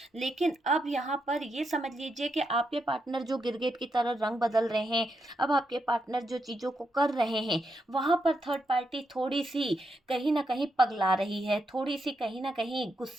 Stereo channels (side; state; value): both; normal; correlation 0.82